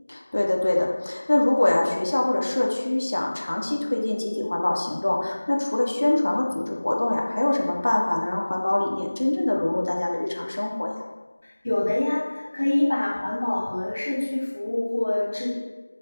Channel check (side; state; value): both; inverted; correlation -1.00